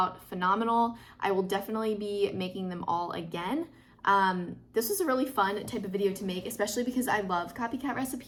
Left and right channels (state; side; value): identical; both; correlation 1.00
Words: phenomenal. I will definitely be making them all again. This was a really fun type of video to make, especially because I love Copycat